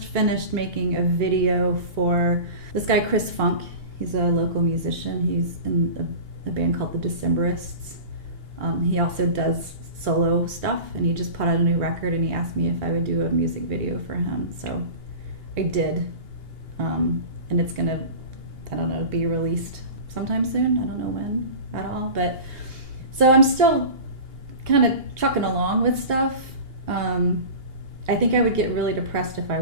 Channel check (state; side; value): late; left; 2.8 ms